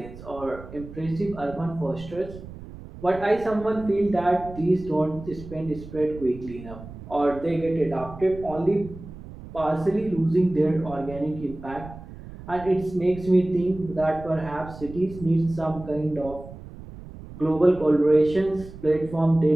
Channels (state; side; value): noise; right; rumble, 15 dB below the sound